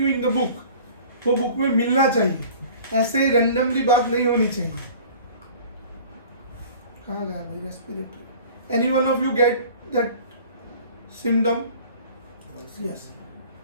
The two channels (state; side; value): inverted; both; correlation -0.45